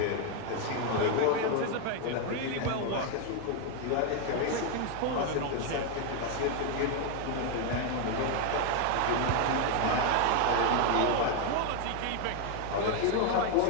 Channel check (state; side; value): different; both; correlation 0.01